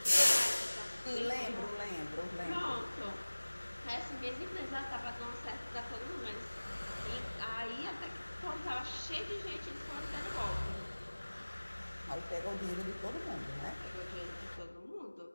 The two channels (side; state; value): both; inverted; correlation -1.00